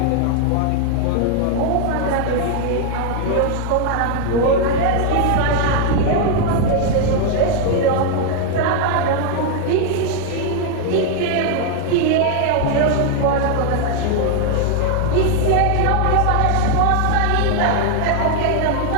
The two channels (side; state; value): both; different; correlation 0.00